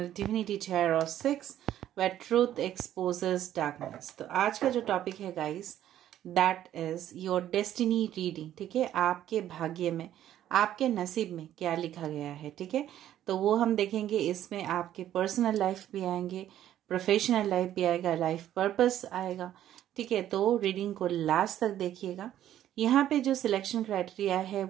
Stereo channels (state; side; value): quieter; left; 11.8 dB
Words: Divinity Tarot 6 where truth exposes darkness। तो आज का जो topic है guys, that is your destiny reading. ठीक है, आपके भाग्य में, आपके नसीब में क्या लिखा गया है। ठीक है, तो वो हम देखेंगे। इसमें आपके पर्सनल लाइफ भी आएंगे, प्रोफेशनल लाइफ भी आएगा, लाइफ पर्पस आएगा। ठीक है, तो रीडिंग को लास्ट तक देखिएगा। यहाँ पे जो सिलेक्शन क्राइटेरिया है